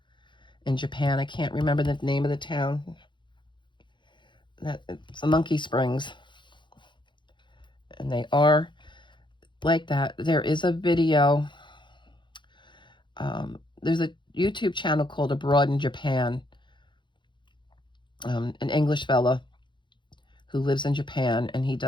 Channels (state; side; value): late; right; 0.23 ms